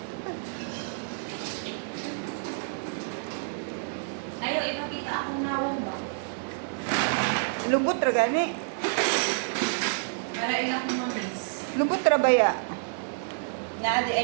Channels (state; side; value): silent; left; digital silence